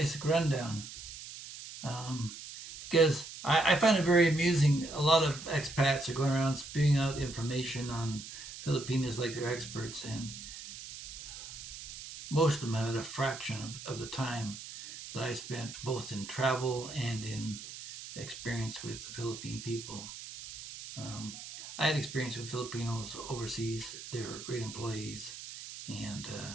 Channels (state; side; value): noise; right; hiss, 12 dB below the sound